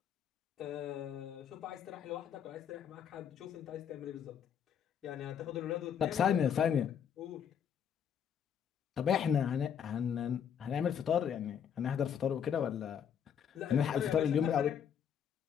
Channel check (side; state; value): right; quieter; 8.2 dB